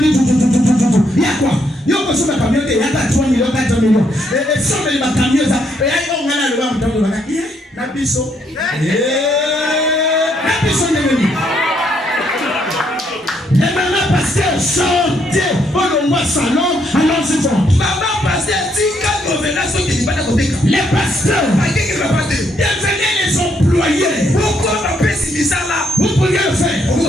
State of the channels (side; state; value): both; normal; correlation 0.73